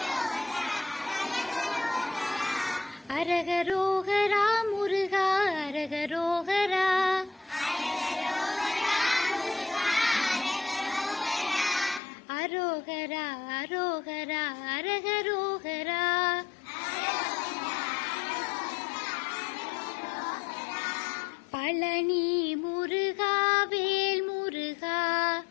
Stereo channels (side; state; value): right; drops out; at 12.0 s